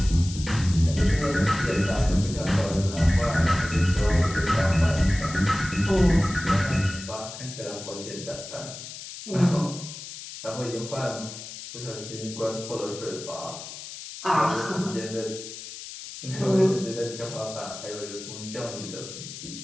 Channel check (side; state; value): left; noise; hiss, 12 dB below the sound